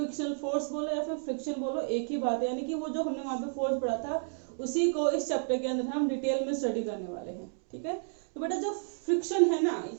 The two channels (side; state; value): left; silent; digital silence